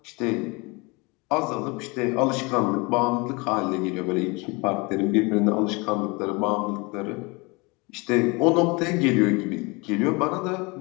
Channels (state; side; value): quieter; right; 27.2 dB